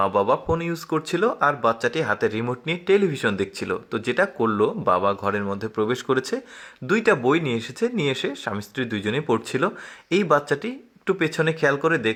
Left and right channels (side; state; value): both; identical; correlation 1.00